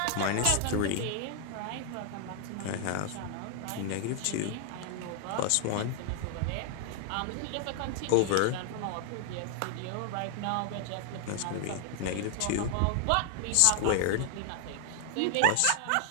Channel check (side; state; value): both; different; correlation 0.00